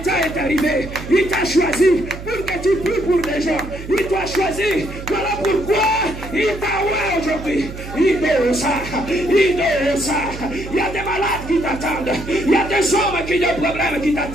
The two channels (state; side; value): noise; right; hum, 11 dB below the sound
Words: est arrivé. Il t'a choisi pour que tu pries pour des gens. Il t'a choisi. Voilà pourquoi il t'a oué aujourd'hui. Il doit ça. Il y a des malades qui t'attendent. Il y a des hommes qui ont des problèmes qui